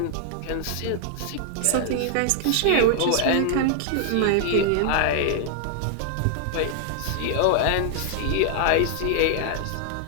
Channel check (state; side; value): different; both; correlation 0.00